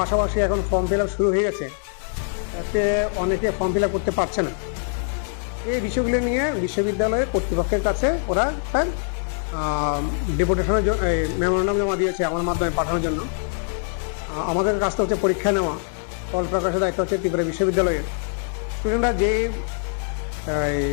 পাশাপাশি এখন ফর্ম ফিল আপ শুরু হয়ে গেছে, তাতে অনেকে ফর্ম ফিল আপ করতে পারছে না। এই বিষয়গুলো নিয়ে বিশ্ববিদ্যালয়ের কর্তৃপক্ষের কাছে ওরা তার ডেপুটেশনের জন্য মেমোরান্ডাম জমা দিয়েছে আমার মাধ্যমে পাঠানোর জন্য। আমাদের কাজটা হচ্ছে পরীক্ষা নেওয়া, ফল প্রকাশের দায়িত্ব হচ্ছে ত্রিপুরা বিশ্ববিদ্যালয়ের। স্টুডেন্টরা যে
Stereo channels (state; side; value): silent; right; digital silence